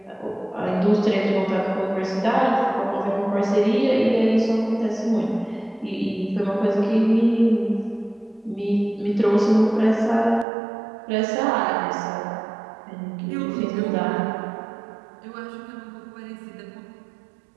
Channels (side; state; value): left; drops out; at 10.5 s